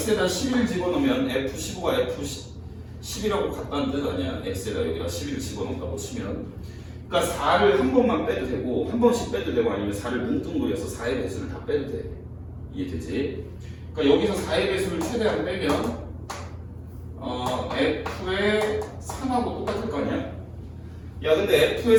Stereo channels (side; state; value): both; identical; correlation 1.00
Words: 11 집어넣으면 F15가 F10이라고 같다는 뜻 아니야? x에다 여기다 11 집어넣는다고 치면. 그러니까 4를 한 번만 빼도 되고, 한 번씩 빼도 되고, 아니면 4를 뭉뚱그려서 4의 배수를 다 빼도 돼. 이해되지? 그러니까 여기서 4의 배수를 최대한 빼면 f의 3하고 똑같을 거 아니야? 야, 근데 f의